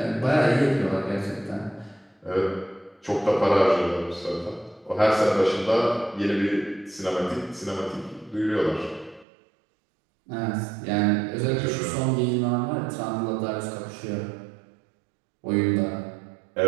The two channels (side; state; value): left; drops out; at 9.2 s